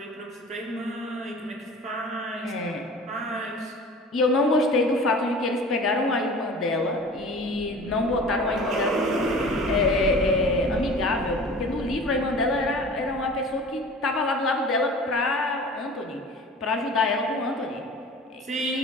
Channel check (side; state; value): both; normal; correlation 0.41